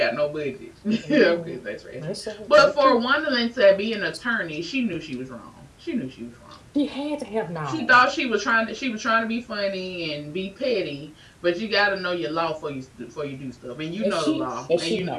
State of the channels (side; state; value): both; identical; correlation 1.00